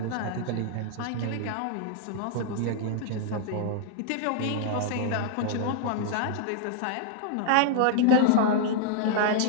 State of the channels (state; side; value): different; both; correlation -0.01